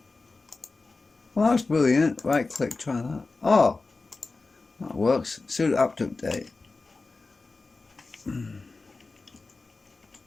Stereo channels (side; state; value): right; quieter; 3.7 dB